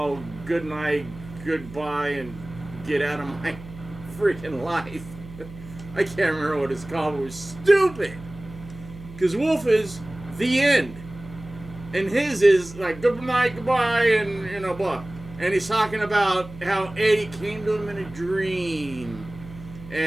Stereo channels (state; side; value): noise; right; hum, 16 dB below the sound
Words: Good Night, Goodbye, and Get Out of My Freaking Life. I can't remember what it's called. It was stupid. Because Wolf is the end. And his is like good night, goodbye, and you know, blah. And he's talking about how Eddie came to him in a dream